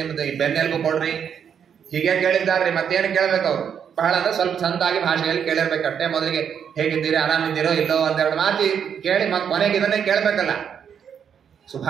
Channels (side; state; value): left; quieter; 7.9 dB